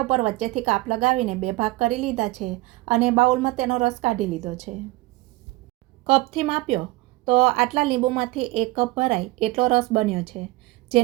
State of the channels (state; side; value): quieter; left; 19.7 dB